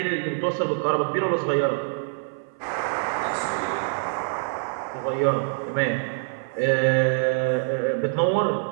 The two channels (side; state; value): left; silent; 55 dB below the other